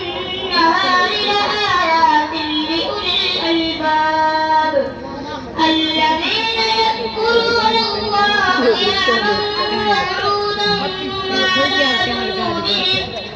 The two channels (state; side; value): identical; both; correlation 1.00